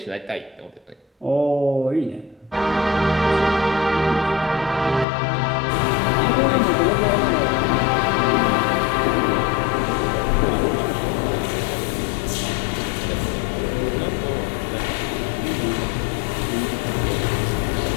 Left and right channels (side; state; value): right; drops out; at 5.1 s